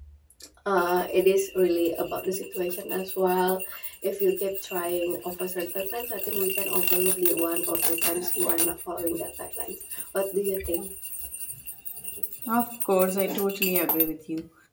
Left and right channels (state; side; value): identical; both; correlation 1.00